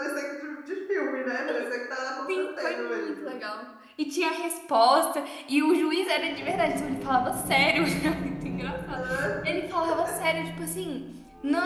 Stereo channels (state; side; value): identical; both; correlation 1.00